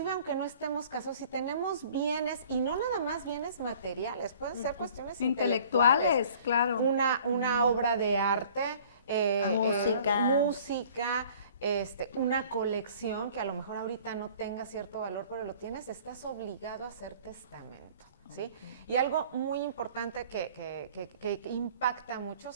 aunque no estemos casados, si tenemos bienes, y no nada más bienes materiales, pueden ser cuestiones intelectuales. Claro. Una obra de arte, música, una colección que a lo mejor ahorita no tenga cierto valor, pero lo tienes, estás obligado a hacer testamento, ¿sí? Y algo muy importante que impacta mucho,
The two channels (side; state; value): both; inverted; correlation -0.51